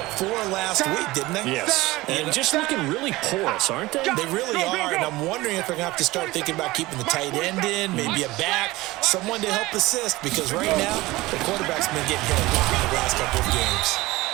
4 last week, didn't they? Yes, and just looking really porous, aren't they? They really are, and I'm wondering if they're going to have to start thinking about keeping the tight end in, maybe a back, someone to help assist, because right now, the quarterback's been getting hit a lot in the last couple of games.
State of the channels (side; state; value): left; quieter; 19.6 dB